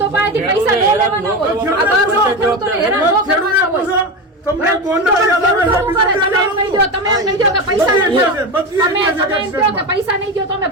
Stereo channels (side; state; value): both; normal; correlation 0.20